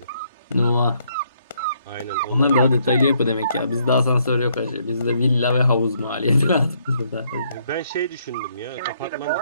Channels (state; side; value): inverted; both; correlation -0.71